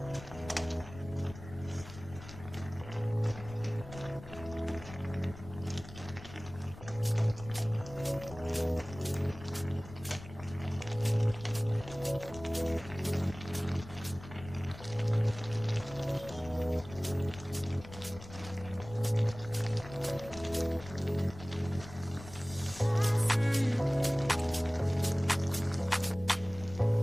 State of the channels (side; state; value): left; noise; rumble, 15 dB below the sound